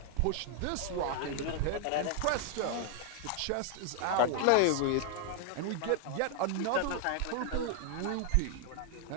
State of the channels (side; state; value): both; different; correlation 0.00